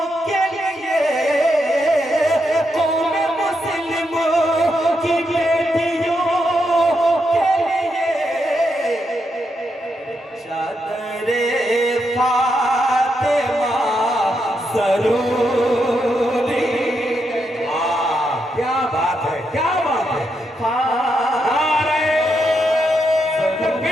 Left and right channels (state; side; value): normal; both; correlation 0.82